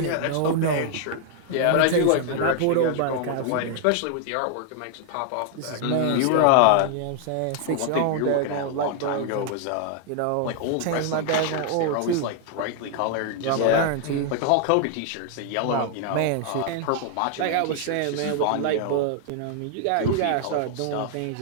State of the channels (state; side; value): different; both; correlation 0.00